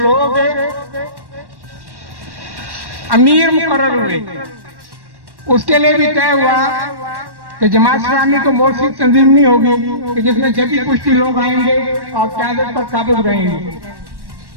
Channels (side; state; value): left; late; 1.1 ms